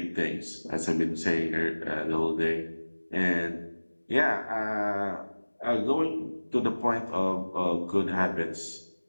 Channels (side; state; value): both; inverted; correlation -1.00